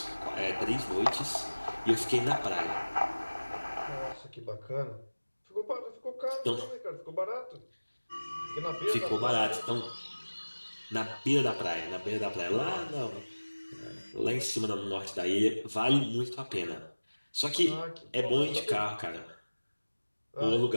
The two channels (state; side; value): inverted; both; correlation -1.00